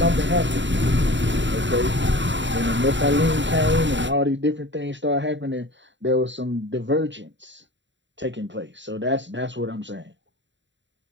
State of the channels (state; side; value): late; left; 0.53 ms